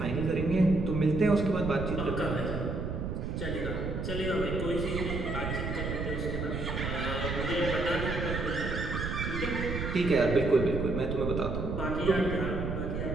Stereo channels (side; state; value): right; noise; rumble, 3 dB below the sound